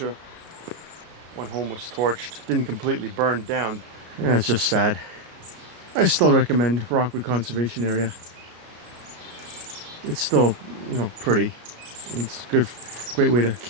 One home was torched. Didn't completely burn down. Yeah, it's just sad. I still recommend Rockwood Conservation Area. It's still, you know, pretty. It's a great way to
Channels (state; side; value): late; left; 34 ms